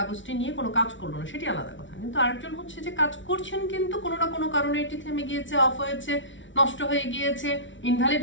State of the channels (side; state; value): right; late; 0.55 ms